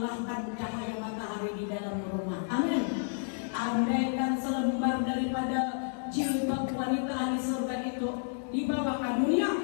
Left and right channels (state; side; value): silent; right; digital silence